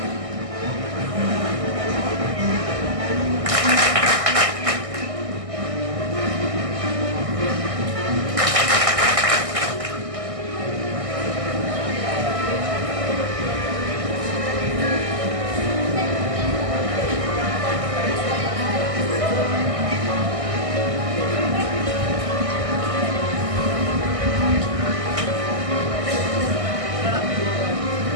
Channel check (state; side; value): late; left; 1.6 ms